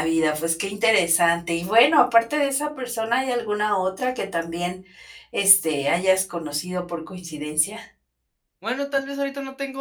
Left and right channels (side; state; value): both; identical; correlation 1.00